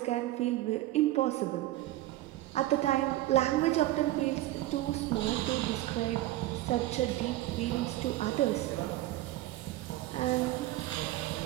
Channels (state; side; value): quieter; left; 15.9 dB